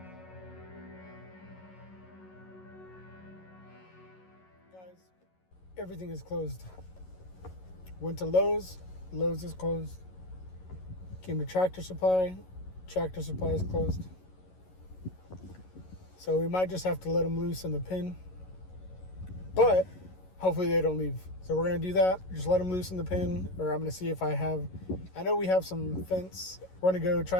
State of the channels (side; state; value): right; late; 11 ms